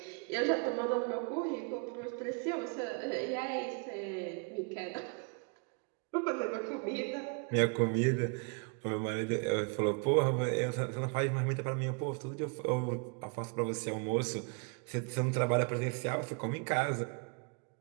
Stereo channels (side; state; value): left; quieter; 34.5 dB